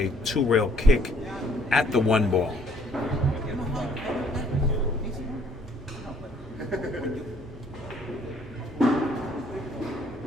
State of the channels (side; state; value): both; normal; correlation 0.63